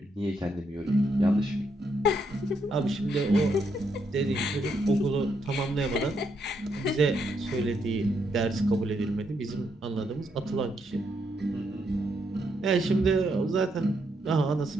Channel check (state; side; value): normal; both; correlation 0.77